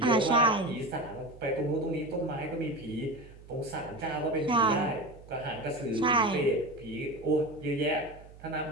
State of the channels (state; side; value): noise; right; hum, 20 dB below the sound